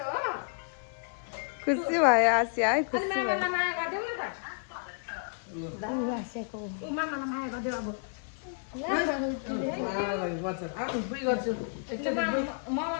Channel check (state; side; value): silent; right; 57 dB below the other